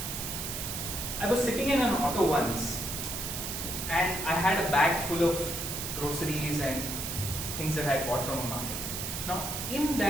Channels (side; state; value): right; noise; hiss, 4 dB below the sound